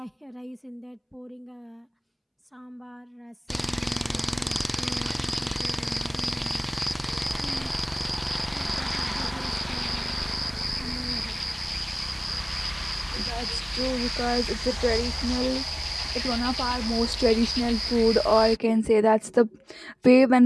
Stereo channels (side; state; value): both; identical; correlation 1.00